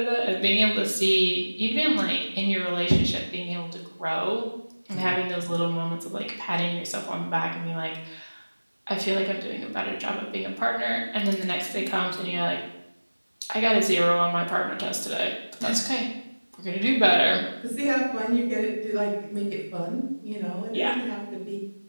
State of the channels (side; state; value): both; inverted; correlation -1.00